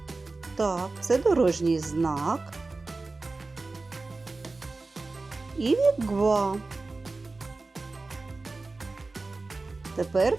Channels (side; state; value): left; quieter; 3.5 dB